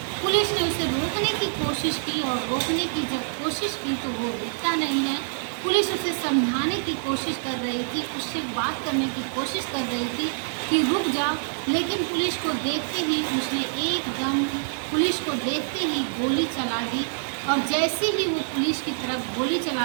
पुलिस ने उसे रोकने की कोशिश की और रोकने की जब कोशिश की तो वो रुकता नहीं है। पुलिस उसे समझाने की कोशिश कर रही थी, उससे बात करने की कोशिश कर रही थी कि रुक जा, लेकिन पुलिस को देखते ही उसने एकदम, पुलिस को देखते ही गोली चला दी। और जैसे ही वो पुलिस की तरफ गोली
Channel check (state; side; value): silent; left; 61 dB below the other